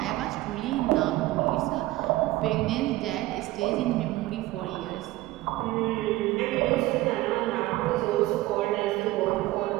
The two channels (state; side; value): quieter; left; 17.6 dB